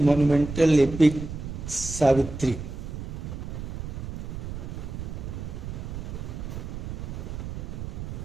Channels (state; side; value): noise; right; rumble, 7 dB below the sound